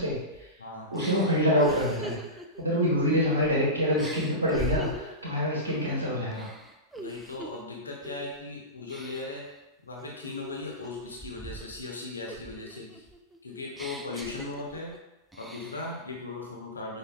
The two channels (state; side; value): normal; both; correlation -0.19